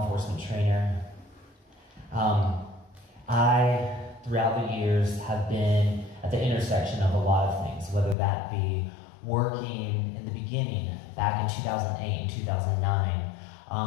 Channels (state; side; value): drops out; right; at 8.2 s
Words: enforcement trainer, I, throughout the years, have been at the intersection of a lot of things, whether that be working in the beginning, back in 2008 and 2009,